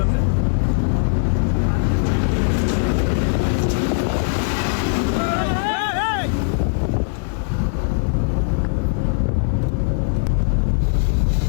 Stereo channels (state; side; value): silent; right; 59 dB below the other